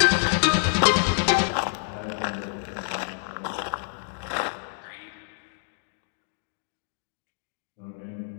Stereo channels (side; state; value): right; silent; digital silence